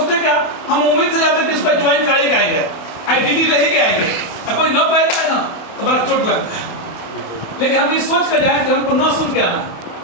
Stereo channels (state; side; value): late; right; 28 ms